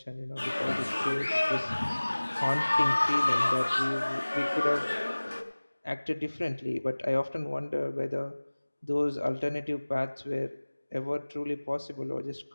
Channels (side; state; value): both; inverted; correlation -1.00